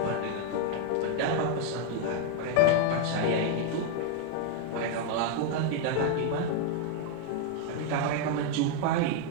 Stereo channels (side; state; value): both; different; correlation 0.00